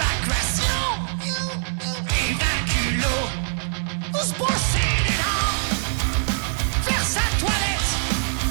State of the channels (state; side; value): silent; left; digital silence